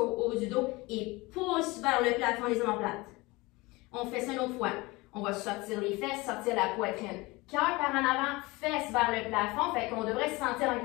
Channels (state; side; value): quieter; right; 22.9 dB